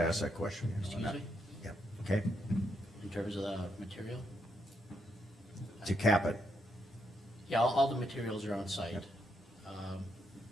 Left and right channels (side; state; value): both; normal; correlation 0.79